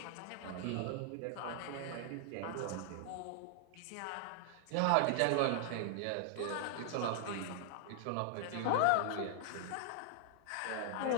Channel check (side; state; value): both; different; correlation 0.00